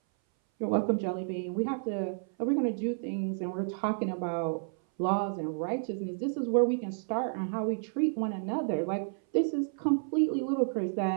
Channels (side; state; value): left; silent; 57 dB below the other